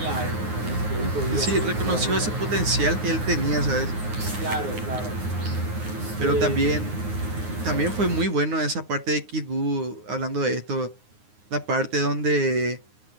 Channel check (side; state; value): left; late; 9.6 ms